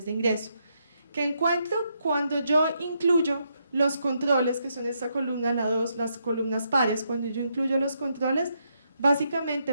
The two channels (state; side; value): inverted; both; correlation -0.78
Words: de ingreso. Que encuentro cuando yo incluyo los controles, que son esta columna, la 2, las columnas pares, cuando yo incluyo los controles, básicamente